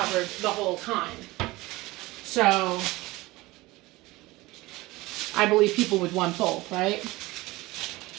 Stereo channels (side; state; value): left; quieter; 20.4 dB